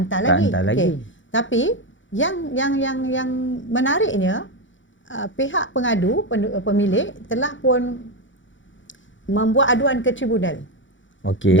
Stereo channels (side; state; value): right; late; 0.56 ms